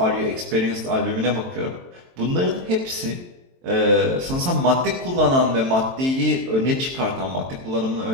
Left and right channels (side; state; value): left; late; 23 ms